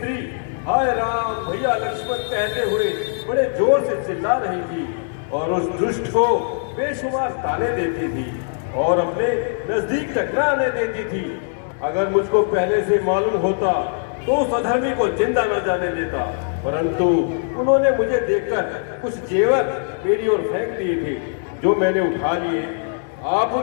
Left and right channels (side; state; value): right; silent; digital silence